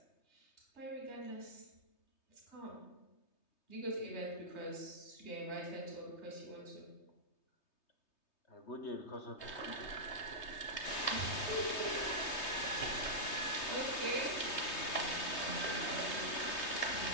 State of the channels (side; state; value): right; late; 3.2 ms